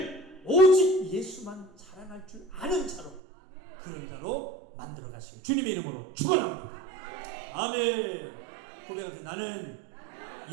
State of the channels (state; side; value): drops out; left; at 3.2 s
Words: 오직 예수만 자랑할 줄 아는 자로, 그런 자로 만들어 가시길 주님의 이름으로 축원합니다. 아멘. 고백하세요. 나는